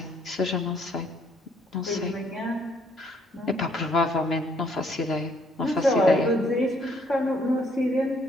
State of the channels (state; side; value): normal; both; correlation 0.67